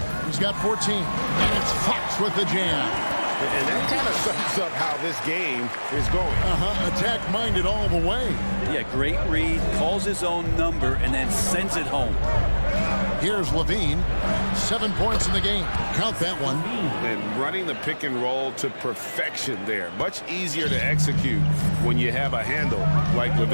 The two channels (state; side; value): inverted; both; correlation -1.00